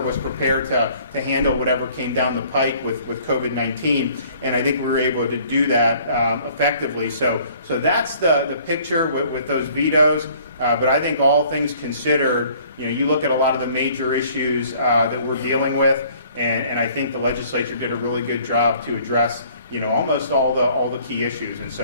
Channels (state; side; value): inverted; both; correlation -0.56